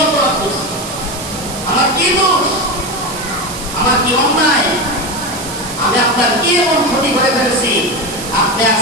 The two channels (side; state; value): right; noise; hiss, 10 dB below the sound